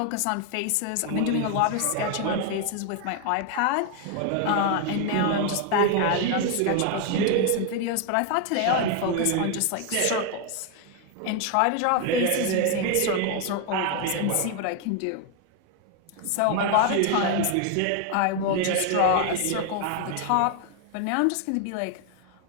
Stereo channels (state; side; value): different; both; correlation 0.01